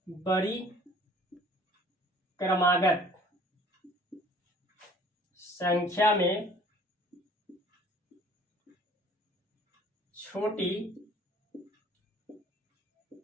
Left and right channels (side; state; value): both; normal; correlation 0.53